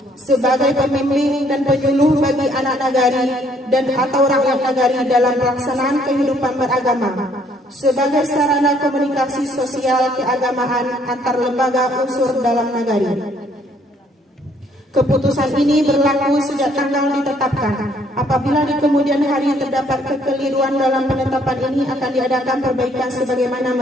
sebagai pembimbing dan penyuluh bagi anak nagari dan atau rakyat nagari dalam pelaksanaan kehidupan beragama sebagai sarana komunikasi sosial keagamaan antar lembaga unsur dalam nagari. Keputusan ini berlaku sejak tanggal ditetapkan. Apabila di kemudian hari terdapat kekeliruan dalam penetapan ini akan diadakan perbaikan sebagaimana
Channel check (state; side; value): normal; both; correlation 0.64